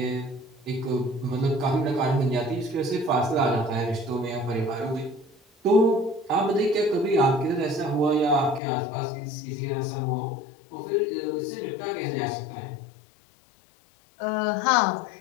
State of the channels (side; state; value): right; drops out; at 8.6 s